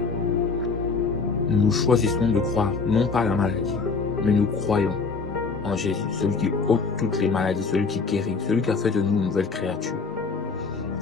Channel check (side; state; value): right; quieter; 4.6 dB